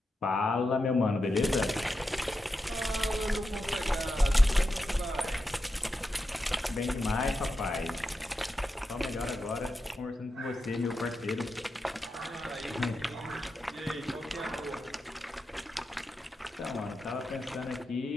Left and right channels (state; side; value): normal; both; correlation 0.88